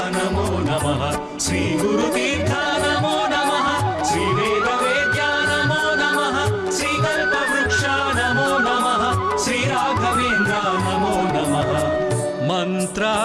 నమో నమః శ్రీ గురు తీర్థ నమో నమః శ్రీ వేద వేద్యా నమో నమః శ్రీ కల్పవృక్ష నమో నమః శ్రీ రాఘవేంద్ర నమో నమః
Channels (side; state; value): both; identical; correlation 1.00